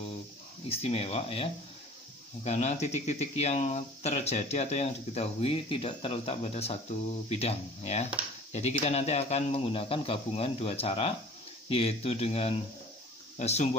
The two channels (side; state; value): both; normal; correlation 0.46